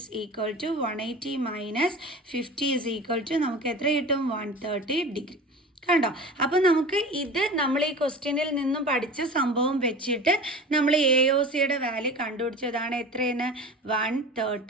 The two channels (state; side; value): normal; both; correlation 0.35